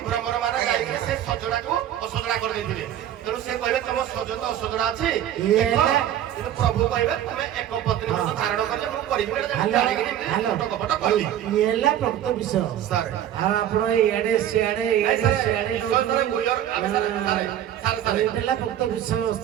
ଭ୍ରମର ମାନ ଯାଇକି ସେ ସଜଡାକୁ ଅସଜଡା କରିଦେଇଥିଲେ ତେଣୁ ସେ କହିବେ ତମ ସଜ ତ ଅସଜଡା ଅଛି କିନ୍ତୁ ପ୍ରଭୁ କହିବେ ତମେ ଏକ ପତ୍ନୀ ବ୍ରତ ଧାରଣ କଲେ ମୁଁ କରିବି ହେଲା ପ୍ରକୃତ ବିଷୟ ଆପଣ ଇଆଡେ ସିଆଡେ ହେଲା ପ୍ରକୃତ ବିଷୟ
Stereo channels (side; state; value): left; quieter; 11.1 dB